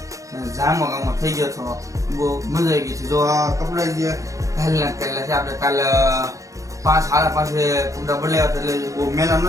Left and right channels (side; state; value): left; late; 0.16 ms